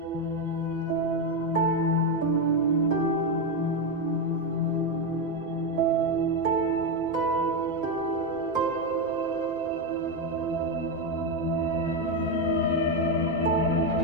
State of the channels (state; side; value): normal; both; correlation 0.07